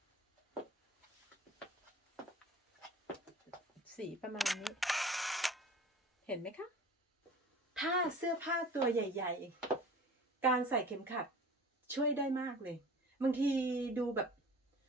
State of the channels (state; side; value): normal; both; correlation 0.42